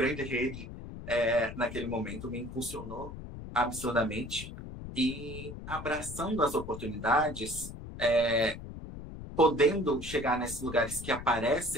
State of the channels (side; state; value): left; noise; rumble, 11 dB below the sound